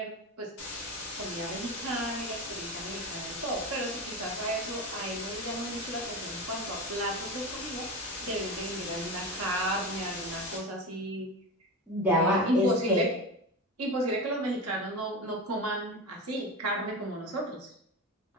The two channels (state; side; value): normal; both; correlation 0.24